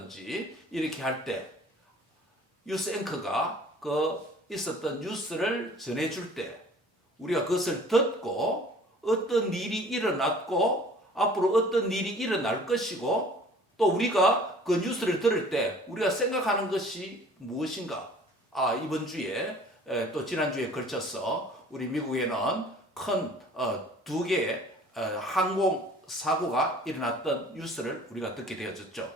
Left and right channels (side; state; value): both; normal; correlation 0.50